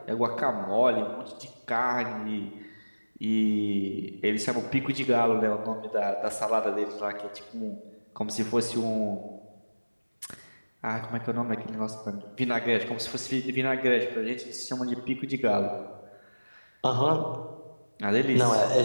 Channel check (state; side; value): inverted; both; correlation -1.00